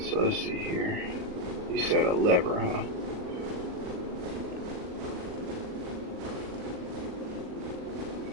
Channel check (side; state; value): left; late; 39 ms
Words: let's see here. You said a lever, huh?